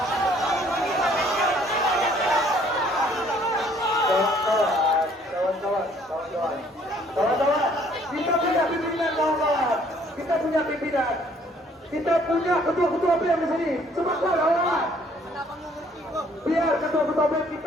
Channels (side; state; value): both; normal; correlation 0.61